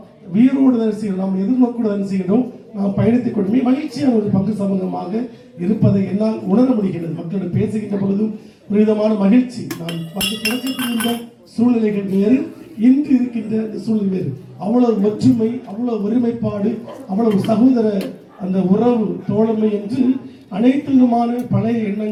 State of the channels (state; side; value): identical; both; correlation 1.00